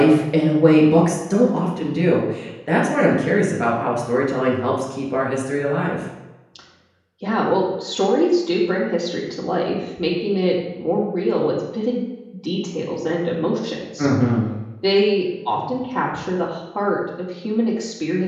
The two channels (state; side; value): identical; both; correlation 1.00